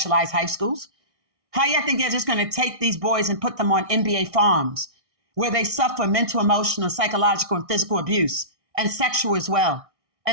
high schools. How you think they're just going to take these boys and put them on NBA farms where they suffer mental, emotional, psychological, and physical abuse, and sexual as well,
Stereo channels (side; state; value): left; late; 1.6 ms